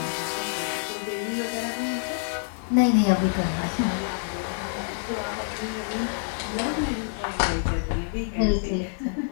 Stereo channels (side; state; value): right; silent; digital silence